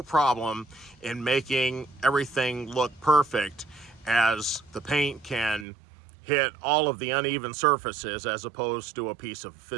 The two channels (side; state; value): left; drops out; at 5.7 s